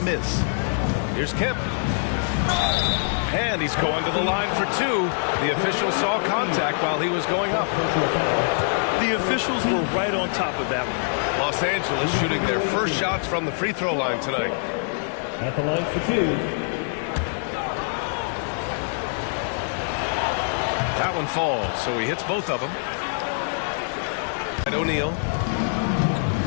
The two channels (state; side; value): silent; right; digital silence